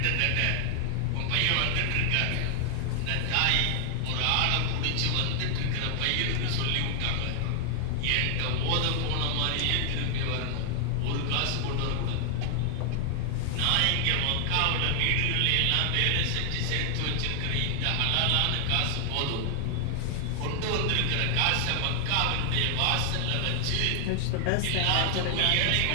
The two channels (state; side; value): different; both; correlation 0.00